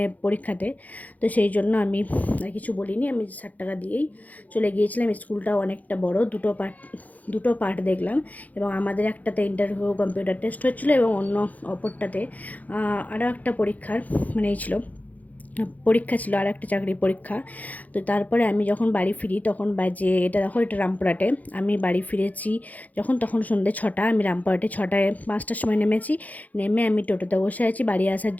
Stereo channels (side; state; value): right; late; 0.078 ms